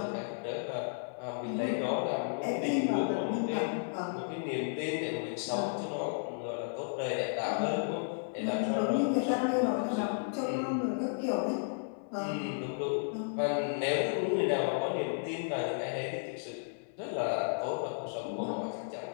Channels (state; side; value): silent; right; 56 dB below the other